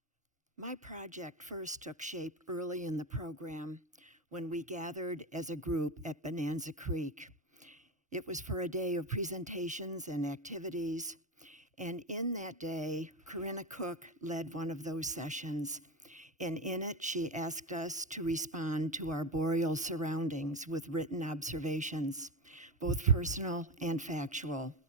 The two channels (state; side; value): normal; both; correlation 0.20